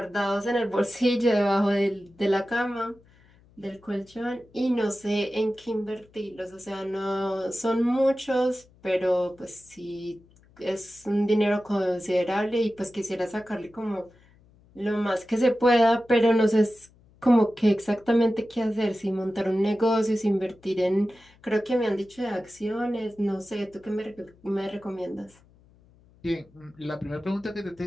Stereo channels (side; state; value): left; noise; hum, 29 dB below the sound